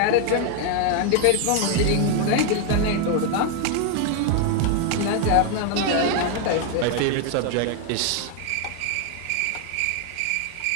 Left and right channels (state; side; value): different; both; correlation 0.01